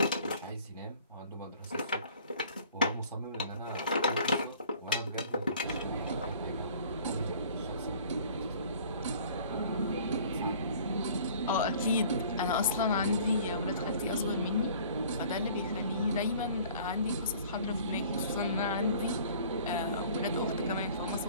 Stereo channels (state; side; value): inverted; both; correlation -0.51